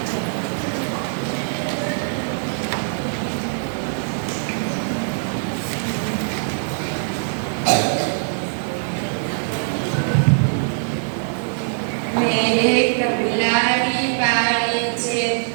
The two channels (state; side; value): silent; left; digital silence